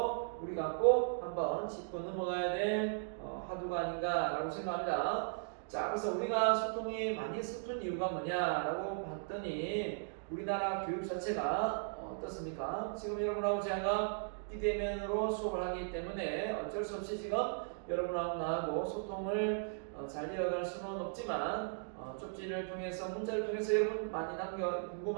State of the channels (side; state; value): left; silent; digital silence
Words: 우리가 꼭 한번 짚고 넘어가야 될 화두가 아닌가라고 생각합니다. 자, 그래서 우리가 소통이 많이 서툰 이유가 뭐냐라고 봤더니 우리나라 교육 자체가 어떻습니까? 지금 여러분하고 제가 비대면으로 수업을 하기 때문에 어쩔 수 없이 지금 여러분하고 나하고 소통을 잘 이어갈 수는 없지만 쪽지를 통해서 문자를 통해서 여러분 많이